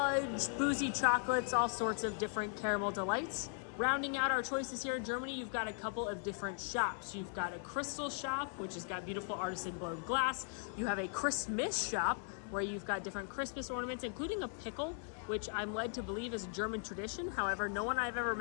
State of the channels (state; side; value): silent; right; 52 dB below the other